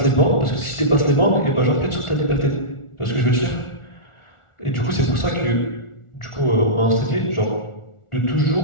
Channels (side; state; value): right; late; 1.4 ms